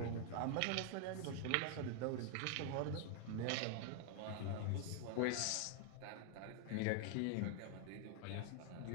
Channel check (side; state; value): both; different; correlation 0.00